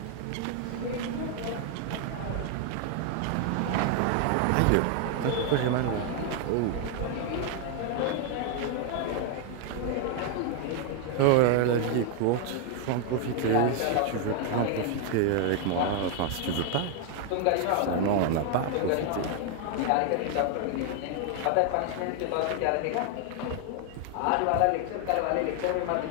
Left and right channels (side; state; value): both; different; correlation 0.00